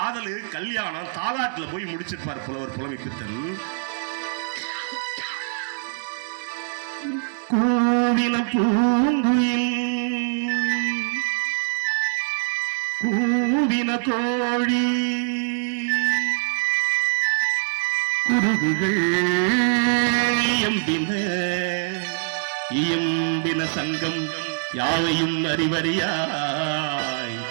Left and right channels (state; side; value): silent; left; 63 dB below the other